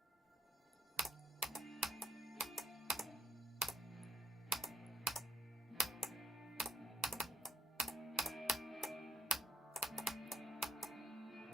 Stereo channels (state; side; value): normal; both; correlation 0.69